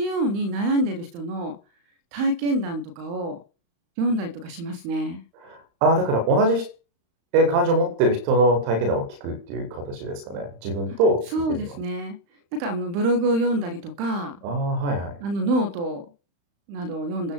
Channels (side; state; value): left; late; 35 ms